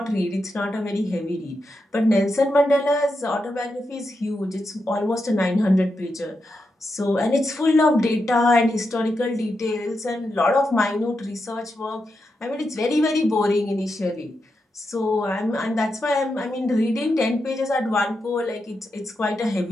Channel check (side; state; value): both; normal; correlation 0.86